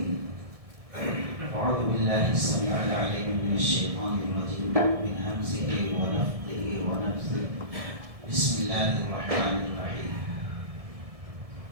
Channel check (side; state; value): left; late; 1.6 ms